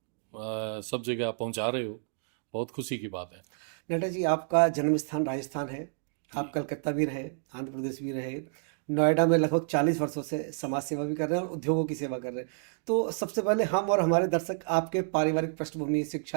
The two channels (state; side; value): silent; left; digital silence